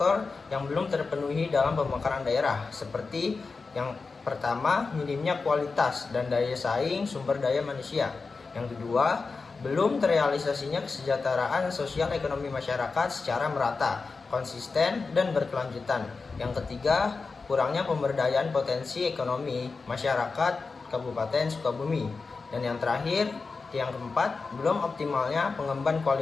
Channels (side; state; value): right; quieter; 4.3 dB